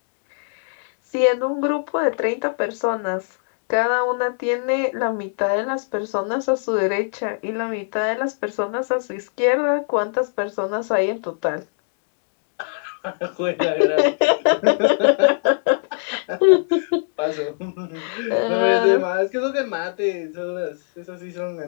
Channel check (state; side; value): silent; right; digital silence